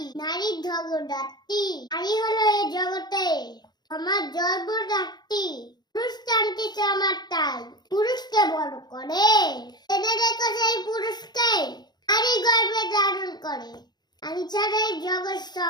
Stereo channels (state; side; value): late; right; 0.20 ms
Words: নারীর জগদ্ধাত্রী। নারী হলো এই জগতে আমার জন্মদাত্রী। পুরুষ টানতেছে আমার তাই, পুরুষকে বড় করে এনে রেখো সেই পুরুষকে নারী গর্ভে ধারণ করে। আমি ছাড়া এই জগৎ